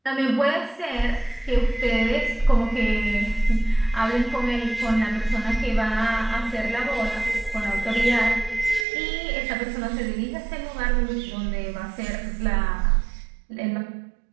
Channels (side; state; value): left; drops out; at 8.8 s